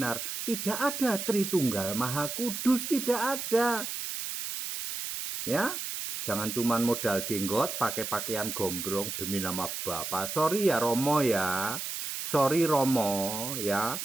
Tidak ada Tritunggal Maha Kudus, tidak ada. Ya, jangan cuman modal jenggot, pakai pakaian gombrong demi nama Bapa. Sorry ya Romo ya, sorry Romo ya.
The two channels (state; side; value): noise; right; hiss, 5 dB below the sound